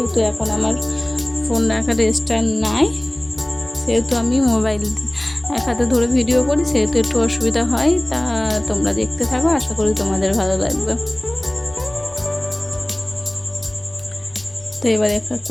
এখন আমার ফোন রাখার স্ট্যান্ড নাই, সেহেতু আমি মোবাইল এক হাতে ধরে ভিডিও করি, সেহেতু একটু অসুবিধা হয়। তা তোমরা দেখতে থাকো, আশা করি তোমাদের ভালো লাগবে। তো এবার এক এক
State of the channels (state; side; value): noise; right; rumble, 26 dB below the sound